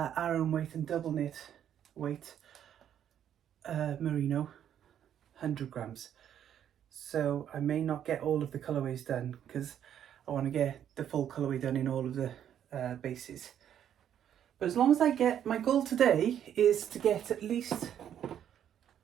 weight and double knit weight merino 100 grams. So I may not get all of the colourways done because I want to get the full colourway done in all of the bases. But as long as I get, my goal today is to get at least,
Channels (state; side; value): quieter; left; 9.8 dB